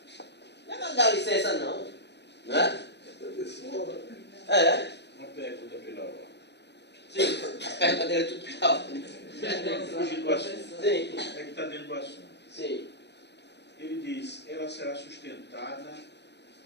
Não é para dar licença não. Né? É. Uma pergunta pela ordem. Sim, as perguntas dele é tudo pela ordem. Fugir do assunto. Sim. É que está dentro do assunto. Sim. Ele diz, ela será sustentada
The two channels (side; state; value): right; late; 0.50 ms